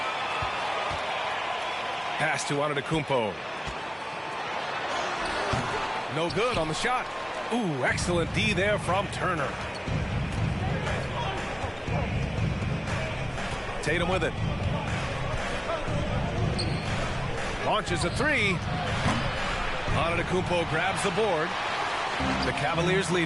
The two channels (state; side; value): identical; both; correlation 1.00